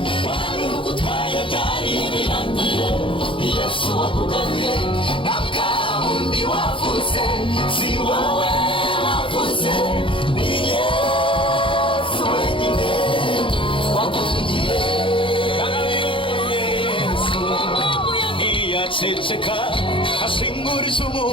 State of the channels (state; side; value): late; right; 0.25 ms